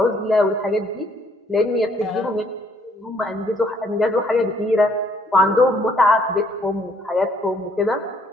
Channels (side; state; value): both; normal; correlation 0.65